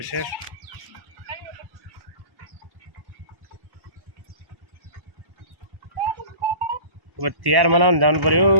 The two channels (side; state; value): left; late; 1.1 ms